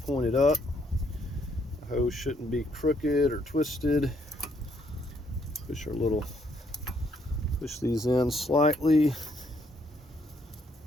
up. The hose shouldn't be crooked or twisted. Push these in slightly.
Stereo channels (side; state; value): both; normal; correlation 0.70